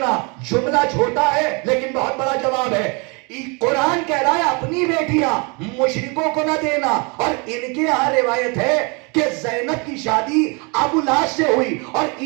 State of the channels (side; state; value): left; quieter; 31.4 dB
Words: جملہ چھوٹا ہے لیکن بہت بڑا جواب ہے۔ قرآن کہہ رہا ہے اپنی بیٹیاں مشرکوں کو نہ دینا، اور ان کے یہاں روایت ہے کہ زینب کی شادی ابو لاس سے ہوئی، اور